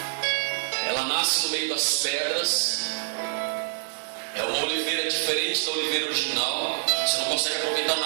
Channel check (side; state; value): left; silent; digital silence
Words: Ela nasce no meio das pedras. É uma oliveira diferente da oliveira original. Você não consegue aproveitar